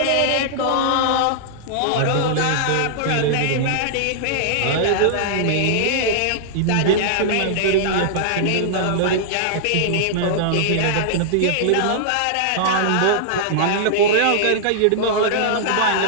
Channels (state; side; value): different; both; correlation -0.01